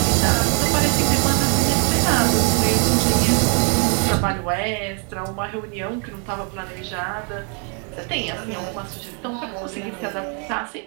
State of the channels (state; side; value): quieter; left; 38.9 dB